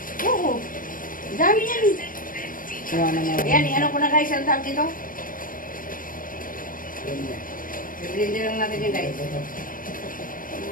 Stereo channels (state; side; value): late; right; 0.40 ms